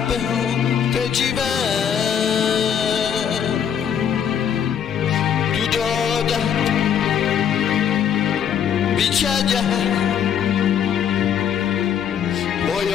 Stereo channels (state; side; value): quieter; right; 8.5 dB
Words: que tiver Tudo bichaja